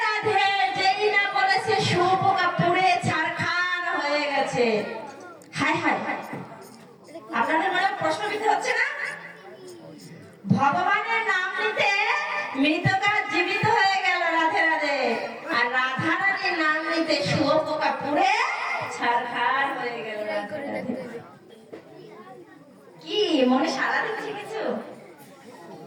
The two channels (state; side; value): identical; both; correlation 1.00